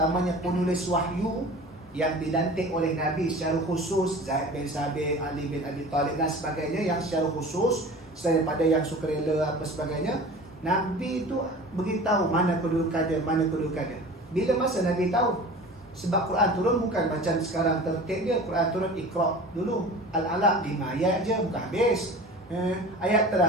penulis wahyu yang dilantik oleh Nabi secara khusus, Zaid bin Sabit, Ali bin Abi Talib dan sebagainya, yang secara khusus selain daripada yang sukarela apa sebagainya, Nabi itu beritahu mana kedudukan dia, mana kedudukan dia. Bila masa Nabi tahu? Sebab Quran turun bukan macam sekarang tertib dia. Quran turun Iqra dulu, Al-Alaq 5 ayat je, bukan habis. Ayat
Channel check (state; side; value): normal; both; correlation 0.39